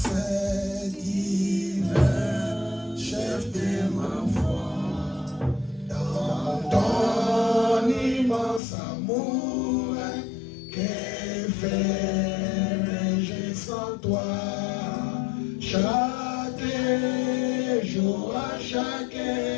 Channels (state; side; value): drops out; right; at 8.6 s